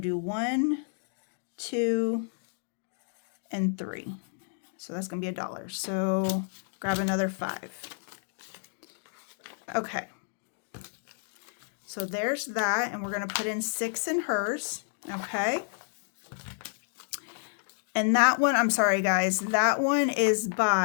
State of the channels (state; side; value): silent; right; digital silence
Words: do 1, 2, and 3. So that's going to be $1. So grab another 5. Okay. So there's that. And we're going to put in 6 in hers. Okay. And that one, I'm sorry guys, that one is